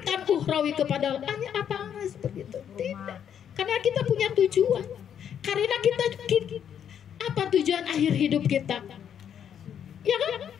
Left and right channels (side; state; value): right; quieter; 8.8 dB